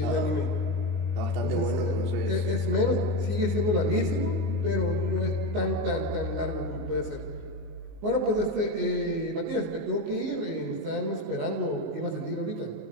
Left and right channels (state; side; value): late; left; 19 ms